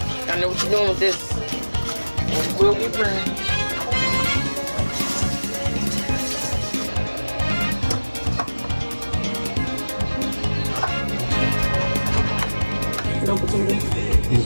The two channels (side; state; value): both; inverted; correlation -1.00